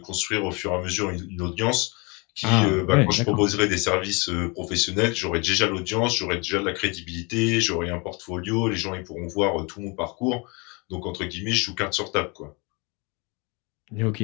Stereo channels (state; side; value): quieter; right; 29.6 dB